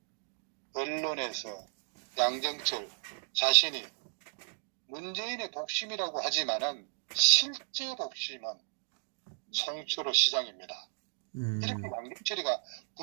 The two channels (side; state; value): left; silent; digital silence